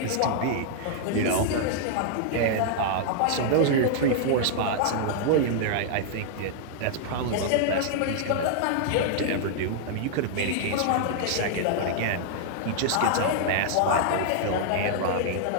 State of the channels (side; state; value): both; different; correlation -0.01